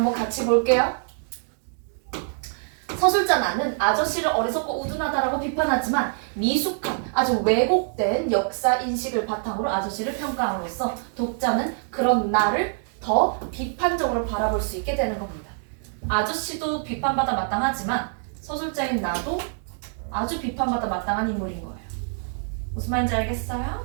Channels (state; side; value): silent; left; 56 dB below the other